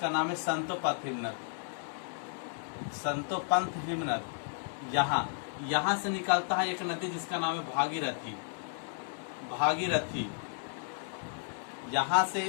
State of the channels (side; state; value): right; silent; 56 dB below the other